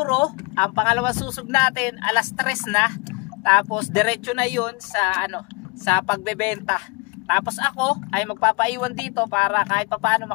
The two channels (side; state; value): right; quieter; 27.8 dB